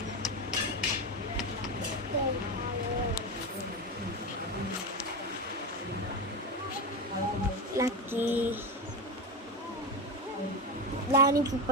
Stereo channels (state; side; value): normal; both; correlation 0.17